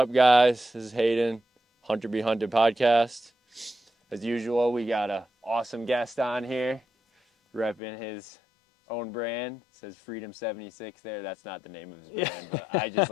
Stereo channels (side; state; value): right; drops out; at 7.8 s